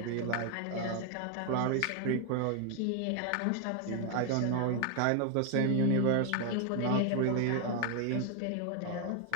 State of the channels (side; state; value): both; different; correlation 0.00